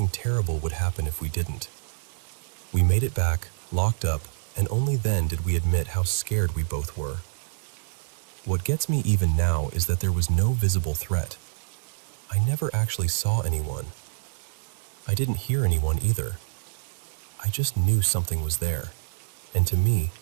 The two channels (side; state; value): left; silent; 60 dB below the other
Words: terrible would happen if we didn't. We made it back, locked up, and only then did we admit how scared we both were. What gets me even now is that there was no visible threat. I never actually saw anyone. I didn't hear anyone either. I just knew something was there, and to me,